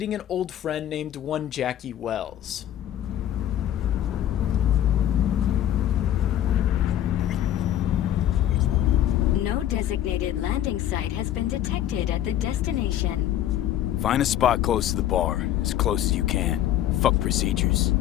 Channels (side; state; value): right; quieter; 11.9 dB